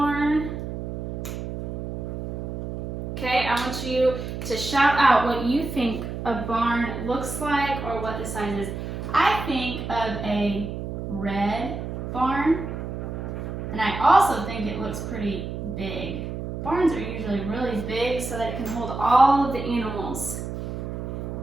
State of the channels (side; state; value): right; noise; hum, 6 dB below the sound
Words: Okay, I want you to shout out what you think a barn looks like or what the size is. I think of a red barn, and I also think it looks pretty big. Barns are usually really big so that it can hold all of the animals.